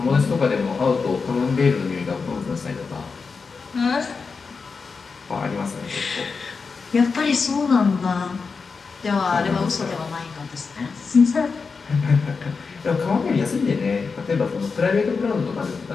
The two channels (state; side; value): quieter; right; 4.9 dB